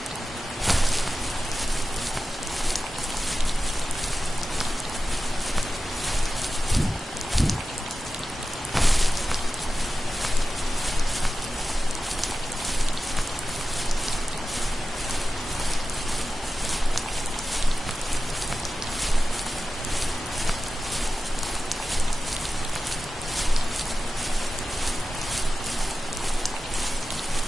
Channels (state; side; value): normal; both; correlation 0.94